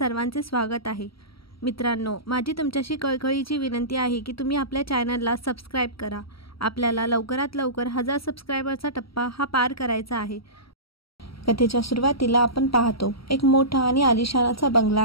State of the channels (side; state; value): right; late; 0.75 ms